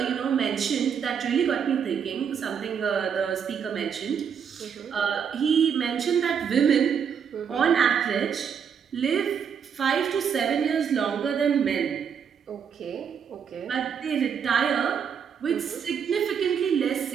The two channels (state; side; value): quieter; left; 7.3 dB